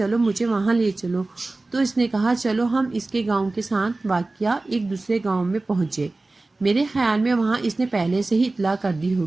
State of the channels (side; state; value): left; quieter; 3.1 dB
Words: مجھے وہاں لے چلو، تو اس نے کہا چلو ہم اس کے گاؤں کے ساتھ واقع ایک دوسرے گاؤں میں پہنچے۔ میرے خیال میں وہاں اس نے پہلے سے ہی اطلاع کر دی